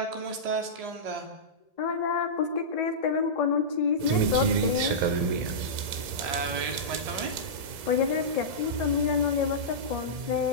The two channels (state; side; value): late; left; 1.8 ms